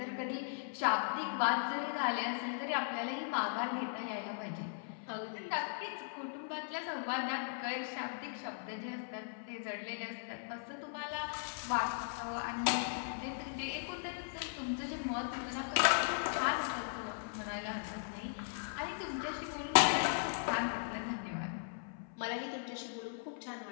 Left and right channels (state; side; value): silent; right; 52 dB below the other